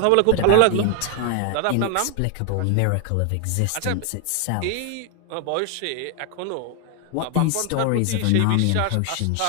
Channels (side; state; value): both; different; correlation 0.00